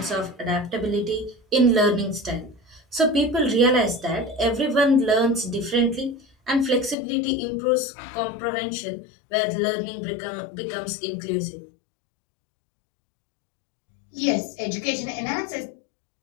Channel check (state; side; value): drops out; right; at 7.0 s